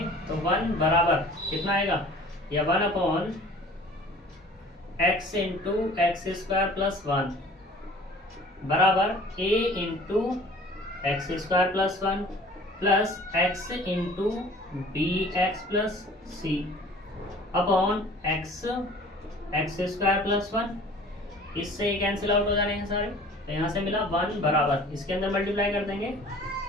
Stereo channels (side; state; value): both; normal; correlation 0.48